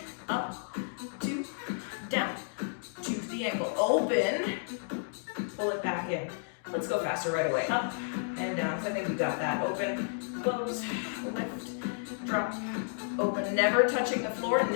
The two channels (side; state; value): right; silent; digital silence